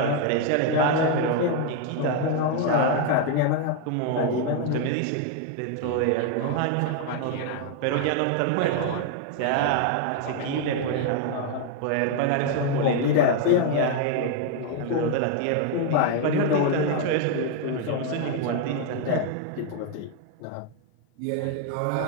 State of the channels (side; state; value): both; different; correlation 0.00